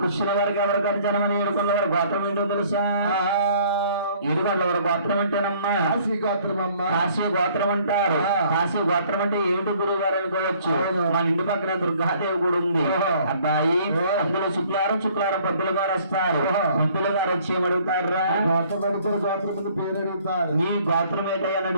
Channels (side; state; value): both; inverted; correlation -0.58